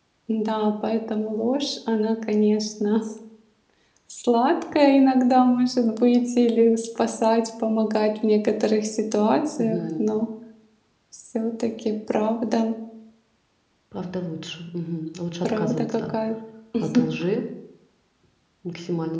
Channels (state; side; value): identical; both; correlation 1.00